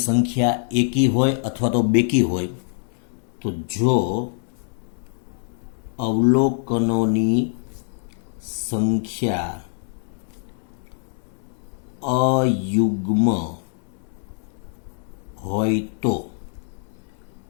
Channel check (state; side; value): silent; right; digital silence